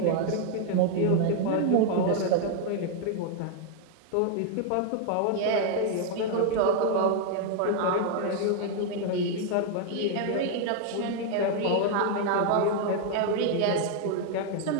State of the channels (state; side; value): different; both; correlation 0.00